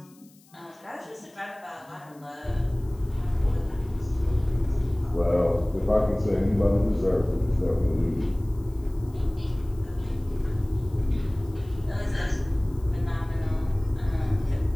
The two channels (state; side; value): noise; left; hiss, 29 dB below the sound